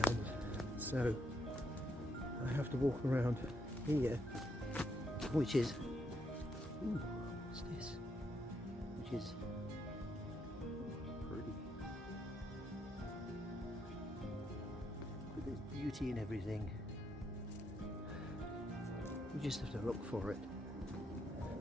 so I have to walk around here, which is, ooh, what's this? Which is pretty. But there's beauty in everything. You just have to look for it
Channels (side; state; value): both; normal; correlation 0.77